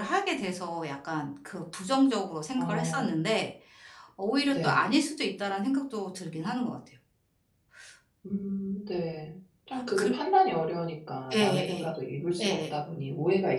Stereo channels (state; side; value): identical; both; correlation 1.00